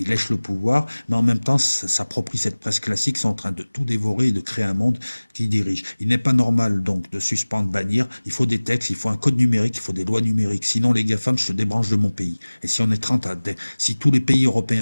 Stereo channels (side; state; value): both; inverted; correlation -1.00